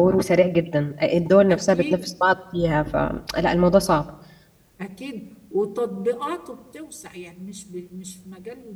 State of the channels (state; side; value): identical; both; correlation 1.00